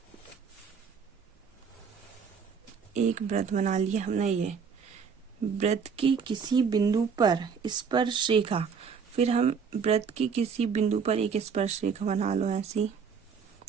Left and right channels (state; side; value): quieter; left; 6.2 dB